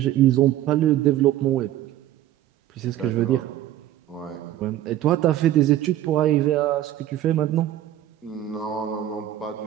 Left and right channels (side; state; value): left; quieter; 12.8 dB